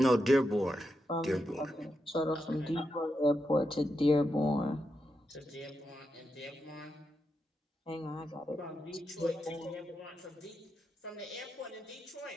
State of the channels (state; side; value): normal; both; correlation 0.86